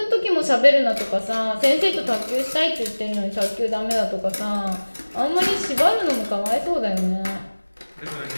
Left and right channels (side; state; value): both; inverted; correlation -1.00